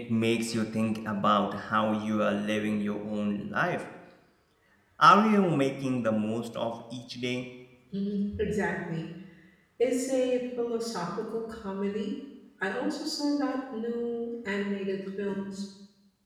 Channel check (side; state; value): both; identical; correlation 1.00